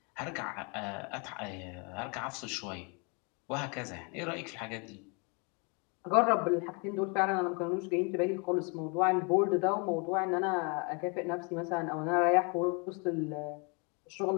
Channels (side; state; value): right; quieter; 33.1 dB